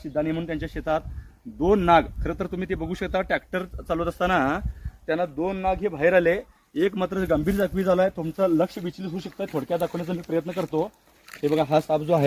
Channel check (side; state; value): both; identical; correlation 1.00